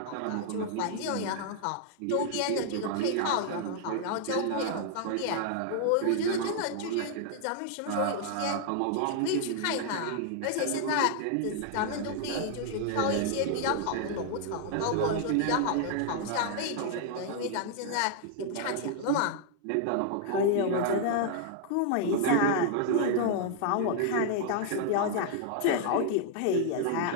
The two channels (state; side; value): different; both; correlation 0.00